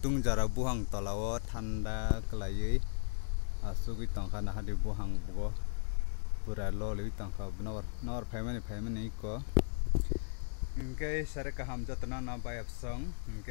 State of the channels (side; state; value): right; silent; digital silence